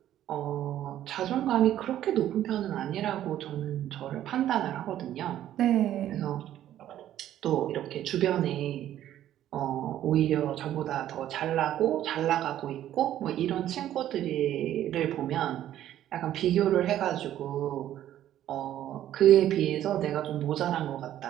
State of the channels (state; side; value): quieter; left; 12.1 dB